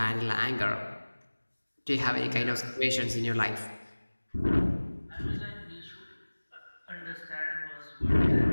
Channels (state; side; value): inverted; both; correlation -1.00